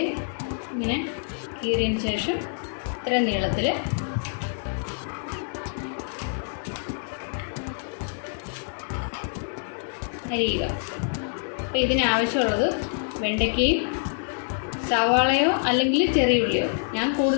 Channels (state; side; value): silent; right; digital silence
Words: ഇങ്ങനെ കീറിയതിന് ശേഷം ഇത്ര നീളത്തിൽ അരിയുക. അപ്പോൾ ഇതിനാവശ്യമുള്ളത് വെണ്ടയ്ക്കയും സവാളയോ അല്ലെങ്കിൽ ചെറിയ ഉള്ളിയോ. ഞാൻ